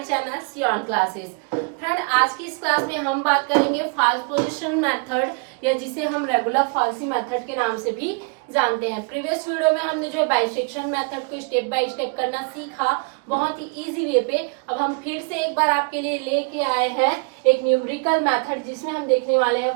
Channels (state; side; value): quieter; left; 36.3 dB